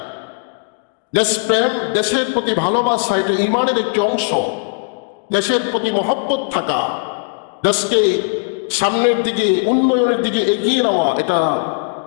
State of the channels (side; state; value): right; silent; digital silence